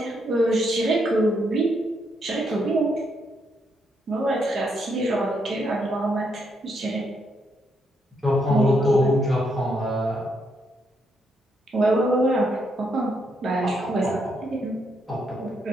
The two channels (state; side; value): normal; both; correlation 0.77